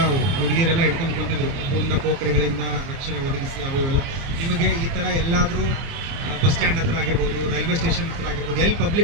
ಹುಡುಗಿಯರೆಲ್ಲ ಹಿಡ್ಕೊಂಡು ಕುಂತಿದ್ರು, ಪೂರ್ಣ ಪೋಖರಿಗಳಿಂದ ರಕ್ಷಣೆ ಒದಗಿಸಿ ಅವೆಲ್ಲ. ನಿಮಗೆ ಈ ಥರ ಎಲ್ಲಾದರೂ ಬಸ್ ಸ್ಟ್ಯಾಂಡ್ ಹತ್ರ ಆಗಿರ್ಬೋದು, ರೈಲ್ವೆ ಸ್ಟೇಷನ್ ಹತ್ರ ಆಗಿರ್ಬೋದು, ಎಲ್ಲಿ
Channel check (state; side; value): late; left; 30 ms